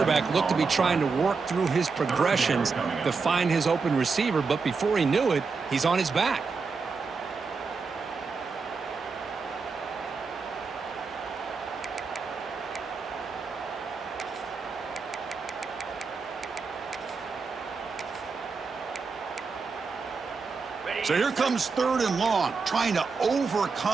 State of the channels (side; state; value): left; quieter; 4.8 dB